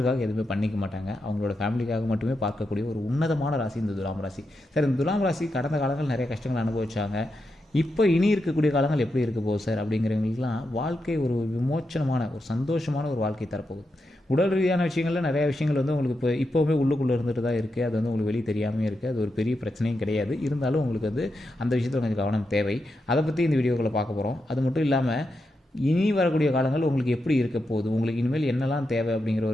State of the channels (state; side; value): normal; both; correlation 0.86